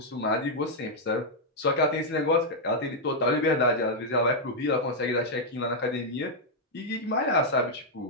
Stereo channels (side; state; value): both; normal; correlation -0.03